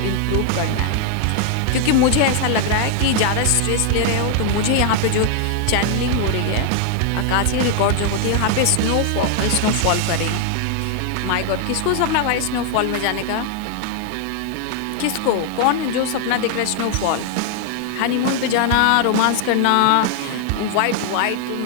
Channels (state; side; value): different; both; correlation 0.00